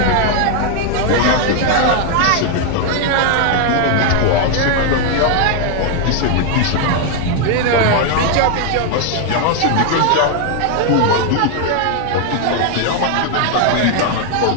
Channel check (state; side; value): different; both; correlation 0.00